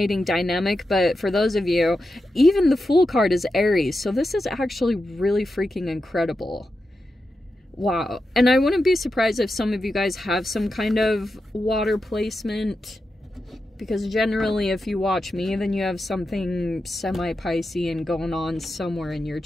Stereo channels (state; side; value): normal; both; correlation 0.89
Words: dynamic. But for those of you, even the Fool card is Aries. So this is actually really freaking incredible. Wow. And I wouldn't be surprised if some of you guys have some kind of water placement. Because generally, if you watch me, then you have something semi-Piscean going on somewhere in your